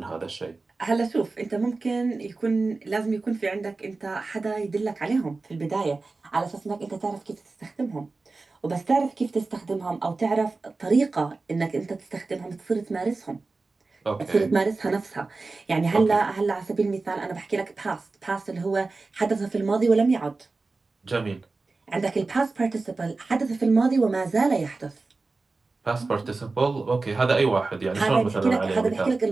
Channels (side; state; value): left; quieter; 3.7 dB